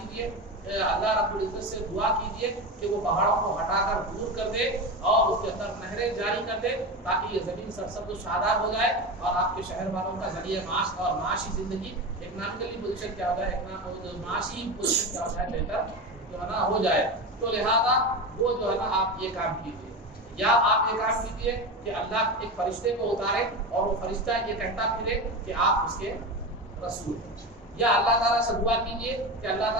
اللہ رب العزت سے دعا کیجیے کہ وہ پہاڑوں کو ہٹا کر دور کر دے اور اس کے اندر نہریں جاری کر دے تاکہ یہ زمین سرسبز و شاداب ہو جائے اور آپ کے شہر والوں کا ذریعہ معاش اور معاشی زندگی اکنامکلی پوزیشن کیا ہو جائے، معاشی پوزیشن کیا ہو جائے، بہتر جو ہے نا ہو جائے۔ تو لہذا وہ جو ہے نا آپ یہ کام کیجیے، یا آپ یہ کام کیجیے کہ اللہ ایک فرشتے کو اتارے اور وہ فرشتہ یہ کہتا پھرے کہ آپ اس کے رسول ہیں، یا اللہ تعالیٰ سے دعا کیجیے کہ اللہ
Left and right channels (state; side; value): normal; both; correlation 0.22